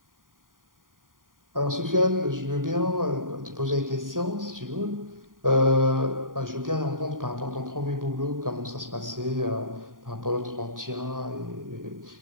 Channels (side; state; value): left; late; 0.90 ms